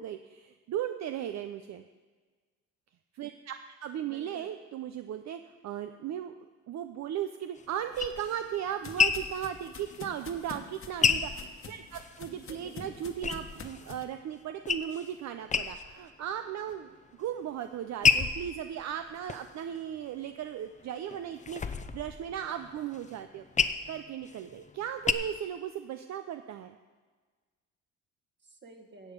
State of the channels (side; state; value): both; normal; correlation 0.33